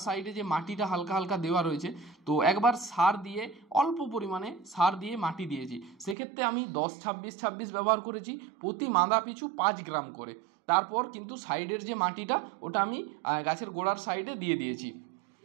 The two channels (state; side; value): drops out; left; at 6.2 s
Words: সাইডে যে মাটিটা হালকা হালকা দেওয়া রয়েছে, তো একবার সার দিয়ে অল্প পরিমাণে সার দিয়ে মাটি দিয়েছি। সেক্ষেত্রে আমি 10-26-26 ব্যবহার করেছি, প্রতি মাদা পিছু 5 গ্রাম করে। তারপর কিন্তু সাইডের যে মাটিটা ওটা আমি গাছের গোড়ার সাইডে দিয়ে দিয়েছি।